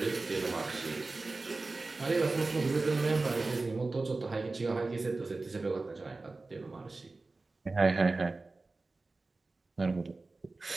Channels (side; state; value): left; quieter; 3.5 dB